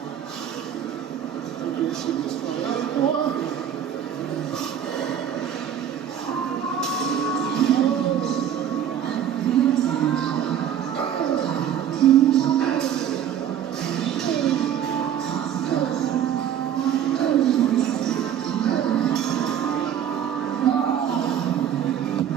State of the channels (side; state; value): left; quieter; 9.5 dB